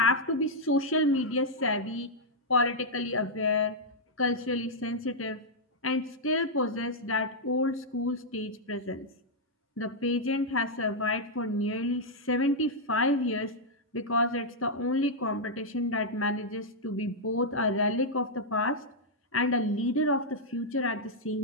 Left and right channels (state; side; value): normal; both; correlation -0.05